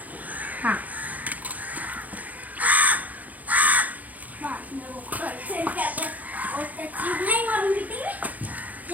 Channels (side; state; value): left; late; 0.078 ms